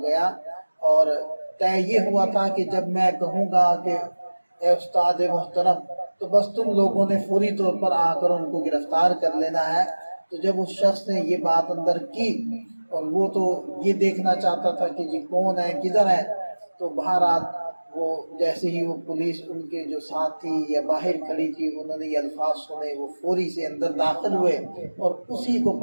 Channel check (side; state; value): both; inverted; correlation -1.00